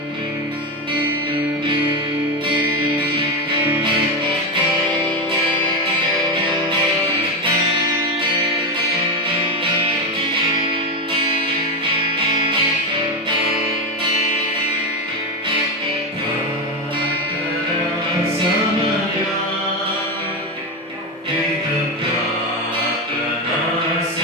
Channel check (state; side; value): normal; both; correlation 0.13